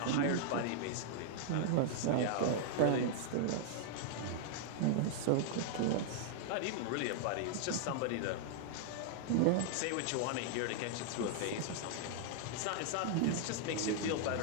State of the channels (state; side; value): different; both; correlation -0.01